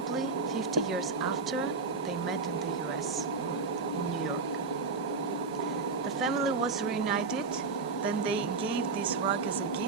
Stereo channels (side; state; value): left; quieter; 4.4 dB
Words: 50 years after, they met in the US, in New York. The family was reunited, Then they gave this rug as a